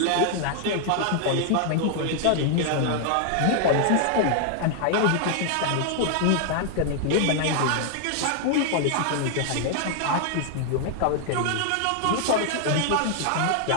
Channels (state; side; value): different; both; correlation 0.00